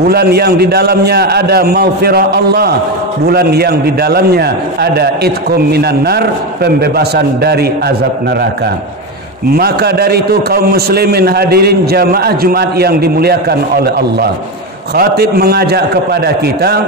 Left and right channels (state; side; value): normal; both; correlation 0.15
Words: yang di dalamnya ada maghfirah Allah, bulan yang di dalamnya ada itqum minan nar, pembebasan dari azab neraka. Maka dari itu kaum muslimin hadirin jamaah Jumat yang dimuliakan oleh Allah, khatib mengajak kepada kita,